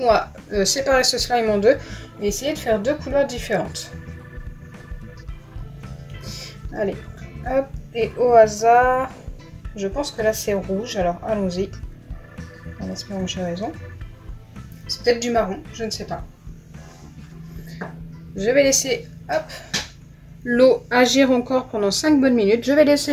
on va séparer ce slime en deux et essayer de faire deux couleurs différentes. Allez, hop, et au hasard, je pense que là c'est rouge, alors allons-y. En espérant que j'ai raison. C'est peut-être du marron, je ne sais pas. Je vais laisser l'eau agir encore pendant 5 bonnes minutes. Je vais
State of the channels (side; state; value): both; identical; correlation 1.00